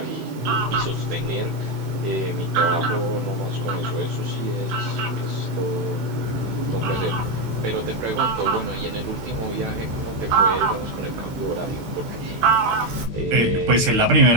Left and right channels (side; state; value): left; late; 16 ms